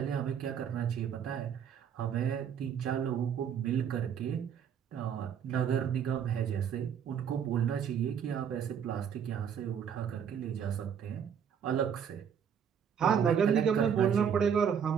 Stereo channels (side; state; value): left; quieter; 7.9 dB